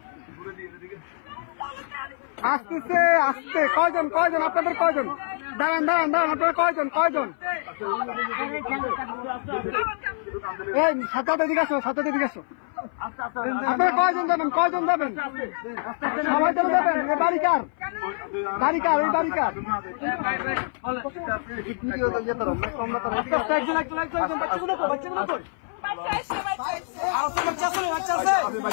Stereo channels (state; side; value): silent; right; 57 dB below the other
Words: আসতেছে, আসতে কয়জন, কয়জন আপনাদের, কয়জন, দাঁড়ান দাঁড়ান দাঁড়ান, আপনারা কয়জন, কয়জন, এই সাথে এদিকে আসো, সাথে এদিকে আসো, আপনারা কয়জন যাবেন, কয়জন যাবেন, সবাই চলে যাবেন। এ বাড়ি কার, বাড়ি কার, এই বাড়ি কার,